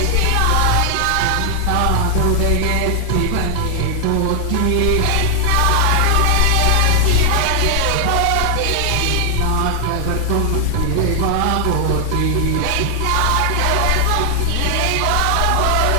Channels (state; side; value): different; both; correlation 0.00